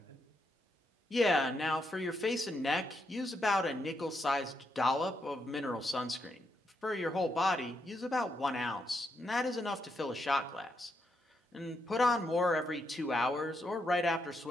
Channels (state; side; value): normal; both; correlation 0.80